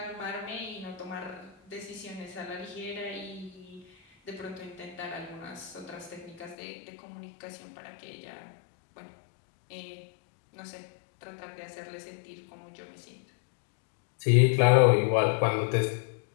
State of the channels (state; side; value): drops out; right; at 6.6 s